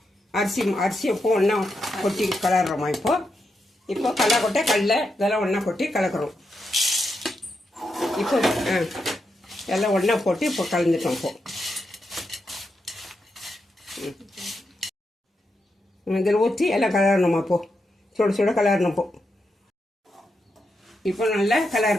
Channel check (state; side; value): normal; both; correlation 0.84